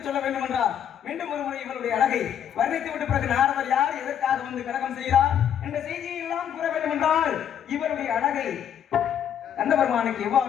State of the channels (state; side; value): quieter; right; 9.2 dB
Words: சொல்ல வேண்டும் என்றால் மீண்டும் ஒரு முறை இவருடைய அழகை வர்ணித்து விட்ட பிறகு நாரதர் யார், எதற்காக வந்து கலகம் செய்கிறார் என்ற செய்தியை எல்லாம் கூற வேண்டும் என்றால் இவருடைய அழகை கண்ட பெருமானுக்கு